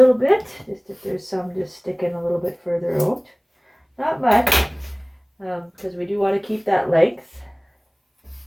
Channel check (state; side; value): identical; both; correlation 1.00